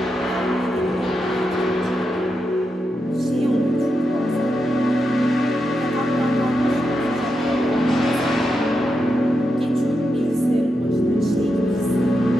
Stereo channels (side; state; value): both; normal; correlation 0.86